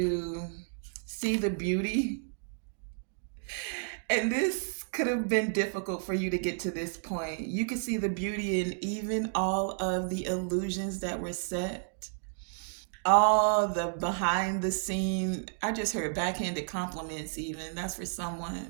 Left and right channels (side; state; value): left; silent; digital silence